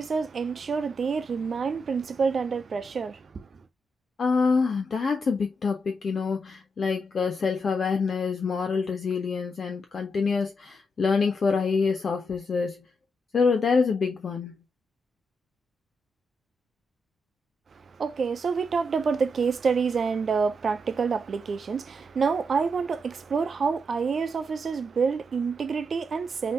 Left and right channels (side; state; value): both; normal; correlation 0.82